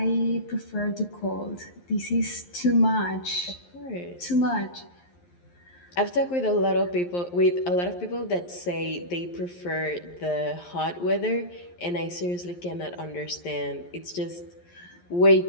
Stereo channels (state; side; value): late; right; 11 ms